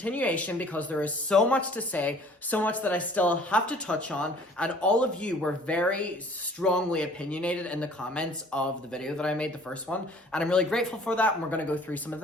because there is so much to say, so much that I still have to touch on, and all of you were very strongly opinionated in the comments of the video that I made, the first one, and I'm really grateful for that, and we're going to go through some of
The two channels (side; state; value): both; normal; correlation 0.52